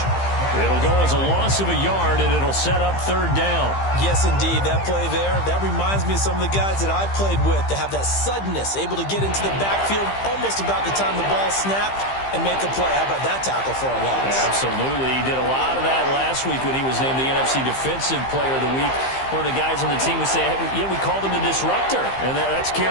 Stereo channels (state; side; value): late; right; 15 ms